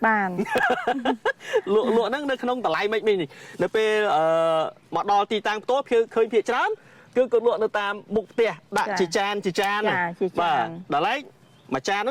បាន លក់ហ្នឹងនៅក្នុងតម្លៃមិនមីងនេះនៅពេលមកដល់ទីតាំងផ្ទាល់ឃើញភាគច្រើនគឺគាត់លក់នៅតាមមុខផ្ទះដាក់ជាចានបាទតម្លៃមួយចានហ្ន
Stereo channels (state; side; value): identical; both; correlation 1.00